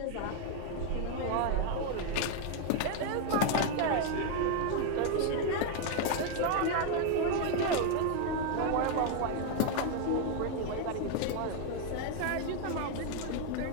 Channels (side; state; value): both; different; correlation 0.01